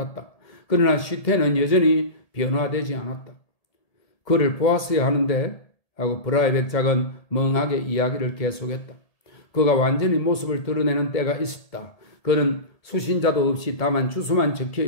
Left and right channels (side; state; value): right; late; 1.7 ms